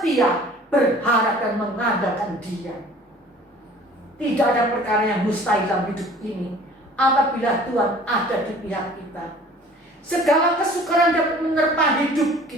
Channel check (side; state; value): both; normal; correlation 0.49